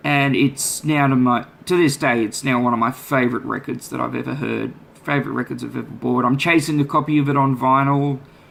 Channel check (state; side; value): identical; both; correlation 1.00